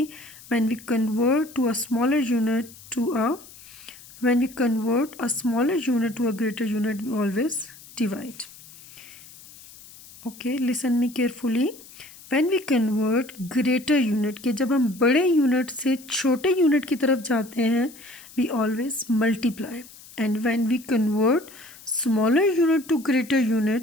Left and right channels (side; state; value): left; noise; hiss, 20 dB below the sound